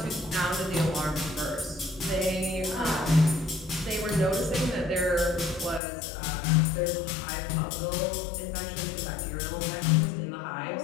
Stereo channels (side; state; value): right; drops out; at 5.8 s